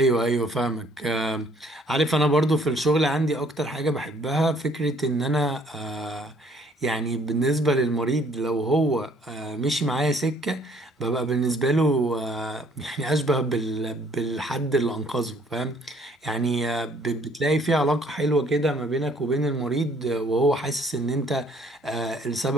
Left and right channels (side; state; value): both; normal; correlation 0.61